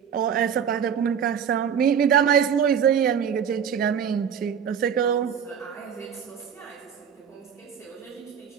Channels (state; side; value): quieter; left; 7.8 dB